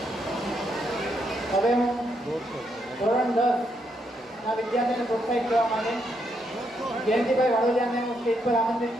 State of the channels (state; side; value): normal; both; correlation 0.77